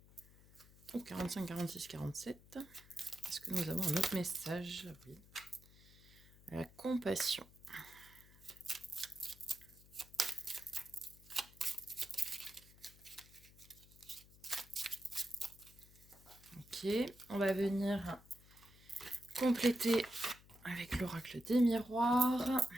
Au 45, 46, 47. Est-ce que nous avons un autre message? Oui. La compassion. Ok, on va venir compléter avec l'oracle des miroirs.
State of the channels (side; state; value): left; noise; hum, 23 dB below the sound